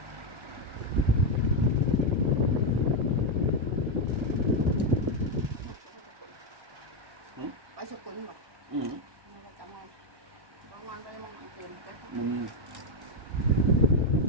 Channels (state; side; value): late; left; 1.1 ms